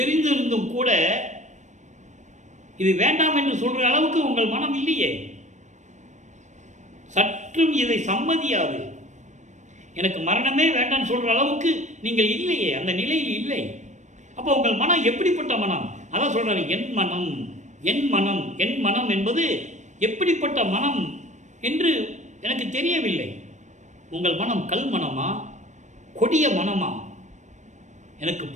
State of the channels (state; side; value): late; left; 0.35 ms